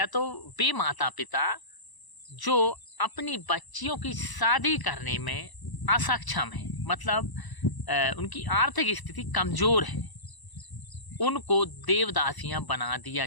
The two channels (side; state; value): right; late; 1.0 ms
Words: तो वे माता पिता जो अपनी बच्चियों की शादी करने में असक्षम है, मतलब उनकी आर्थिक स्थिति कमज़ोर है, उनको देवदासियां बना दिया